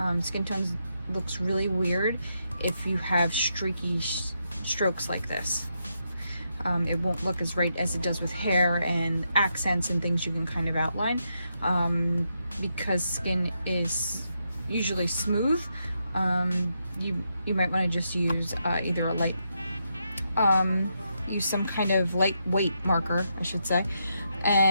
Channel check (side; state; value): both; inverted; correlation -0.82